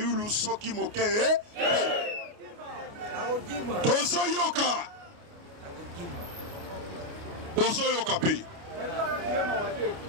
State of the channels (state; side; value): late; left; 29 ms